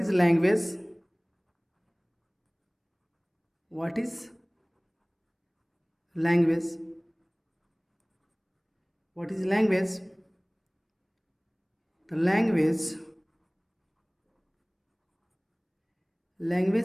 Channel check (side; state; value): both; identical; correlation 1.00